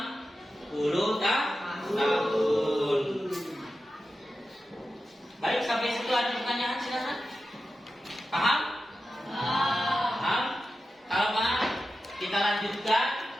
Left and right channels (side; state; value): both; normal; correlation 0.92